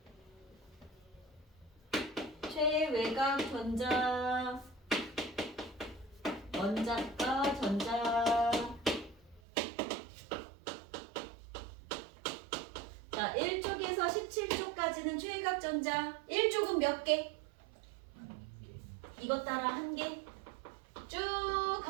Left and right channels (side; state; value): left; drops out; at 9.4 s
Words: 최외곽 전자, 원자가 전자. 자, 1쪽에서 17쪽까지는 최외곽 전자. 1쪽은 몇 개? 이것 따라 1개. 쭉